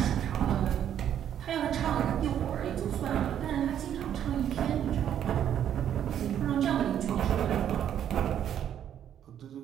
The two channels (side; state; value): left; quieter; 9.9 dB